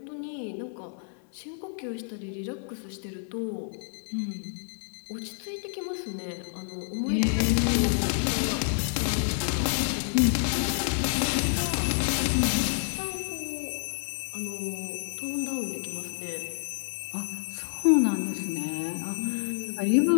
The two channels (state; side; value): silent; right; digital silence